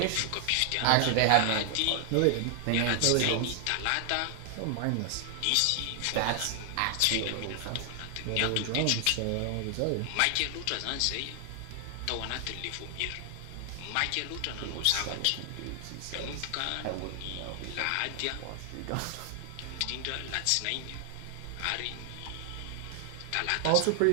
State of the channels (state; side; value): different; both; correlation 0.00